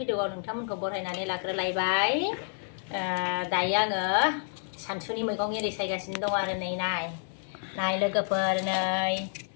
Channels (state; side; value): silent; right; digital silence